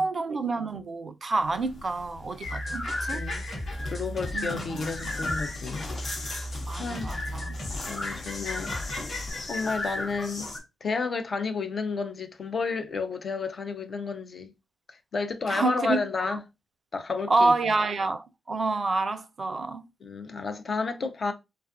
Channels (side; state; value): both; normal; correlation 0.84